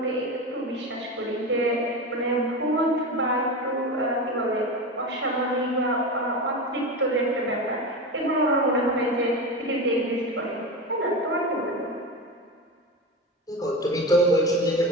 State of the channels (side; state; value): both; normal; correlation 0.23